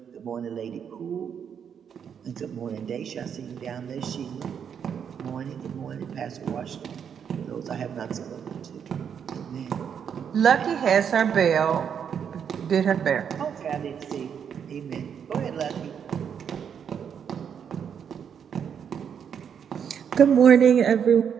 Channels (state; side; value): quieter; left; 7.7 dB